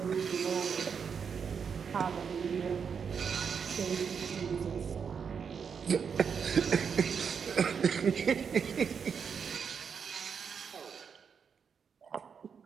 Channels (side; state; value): left; quieter; 6.6 dB